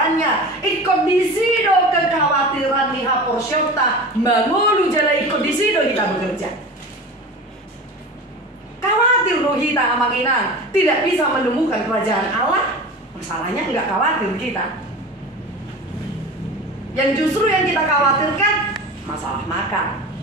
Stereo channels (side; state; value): both; normal; correlation 0.33